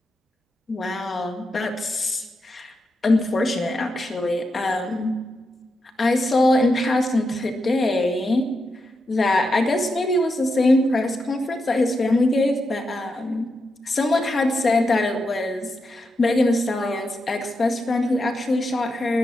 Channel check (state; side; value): normal; both; correlation 0.86